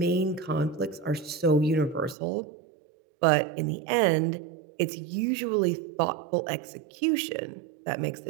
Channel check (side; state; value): left; drops out; at 2.1 s